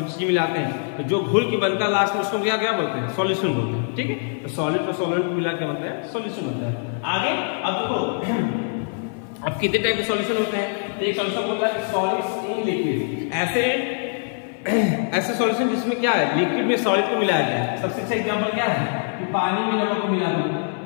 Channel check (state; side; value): silent; right; 56 dB below the other